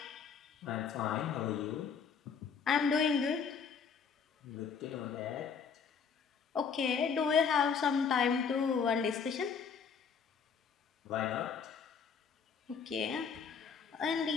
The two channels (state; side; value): quieter; right; 6.2 dB